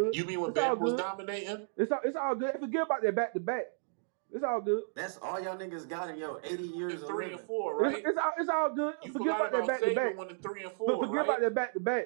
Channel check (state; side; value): silent; left; digital silence